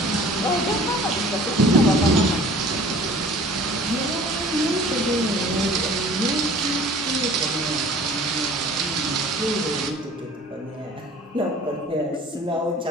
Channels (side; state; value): both; normal; correlation 0.47